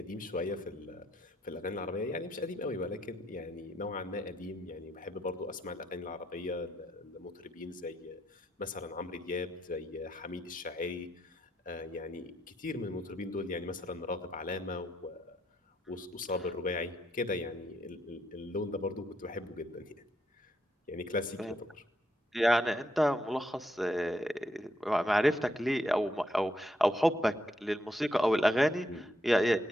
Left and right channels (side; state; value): both; normal; correlation 0.77